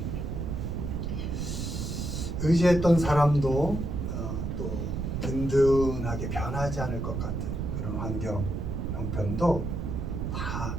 의지했던 사람도 또 든든하게 변하지 않을 것 같은 그런 환경, 형편도 다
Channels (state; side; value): noise; right; rumble, 3 dB below the sound